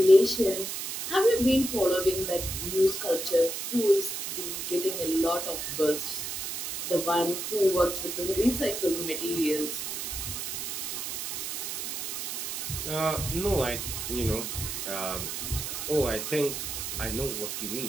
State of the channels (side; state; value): right; noise; hiss, 4 dB below the sound